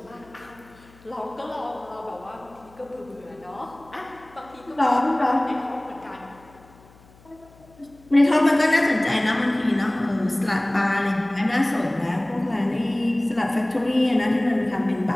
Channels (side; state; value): left; noise; hum, 26 dB below the sound